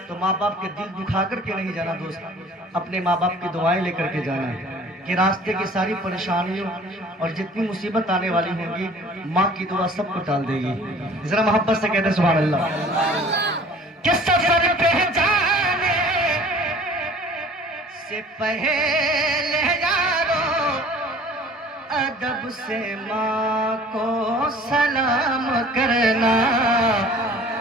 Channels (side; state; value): both; normal; correlation 0.49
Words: तो माँ बाप के दिल दुखा करके नहीं जाना दोस्त, अपने माँ बाप की दुआएं लेकर के जाना है कि रास्ते की सारी परेशानियों और जितनी मुसीबत आने वाली होंगी, माँ की दुआ सबको टाल देगी। जरा मोहब्बत से कहते सुभान अल्लाह। कि सफर पे जाने से पहले यारों अदब से माँ को सलाम करना,